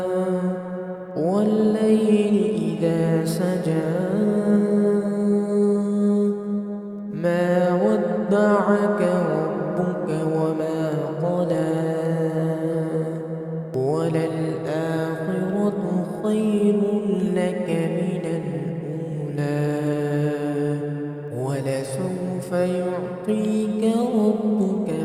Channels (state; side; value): identical; both; correlation 1.00